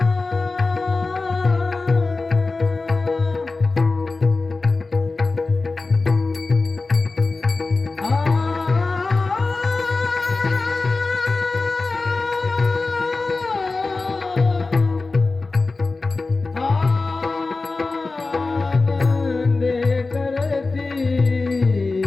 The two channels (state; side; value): quieter; right; 3.7 dB